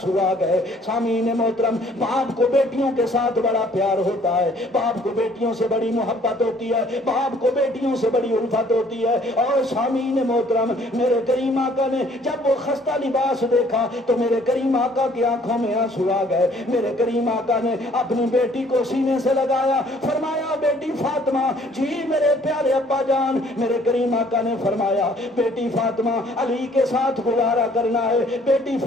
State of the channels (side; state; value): both; normal; correlation 0.59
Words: آ گئے۔ سامعین محترم باپ کو بیٹیوں کے ساتھ بڑا پیار ہوتا ہے، باپ کو بیٹیوں سے بڑی محبت ہوتی ہے، باپ کو بیٹیوں سے بڑی الفت ہوتی ہے، اور سامعین محترم میرے کریم آقا نے جب وہ خستہ لباس دیکھا تو میرے کریم آقا کی آنکھوں میں آنسو آ گئے۔ میرے کریم آقا نے اپنی بیٹی کو سینے سے لگایا، فرمایا بیٹی فاطمہ جی میرے پیارے ابا جان۔ میرے کریم آقا نے فرمایا بیٹی فاطمہ علی کے ساتھ گزارا کرنا ہے، بیٹی